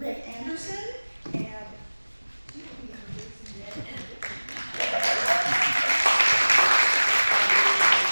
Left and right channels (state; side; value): inverted; both; correlation -1.00